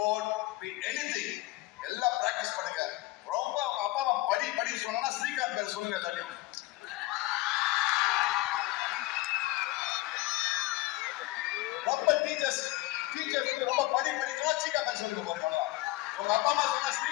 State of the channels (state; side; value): quieter; right; 18.7 dB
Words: be it anything, எல்லாம் practice பண்ணுங்க. ரொம்ப அப்பா அம்மா படி சொன்னா ஸ்ரீகாந்த் பேர் சொல்லுங்க எல்லாத்தையும். ரொம்ப டீச்சர்ஸ் ரொம்ப படிக்கிறா ஸ்ரீகாந்த் பேர் சொல்லுங்க பாருங்க. உங்க அப்பா அம்மா சொன்னா